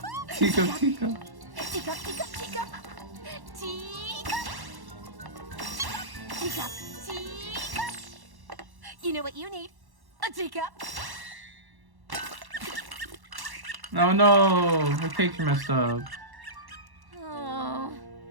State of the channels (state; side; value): late; left; 1.1 ms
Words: Tico. Teacup, teacup, teacup. Teacup. Teacup, teacup. You know what you need? A teacup. Oh no, my picture messed up. Oh.